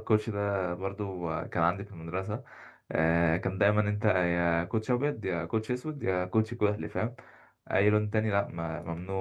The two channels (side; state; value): both; identical; correlation 1.00